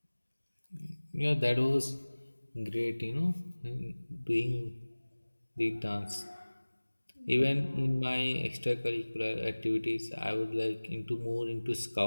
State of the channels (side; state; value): both; inverted; correlation -1.00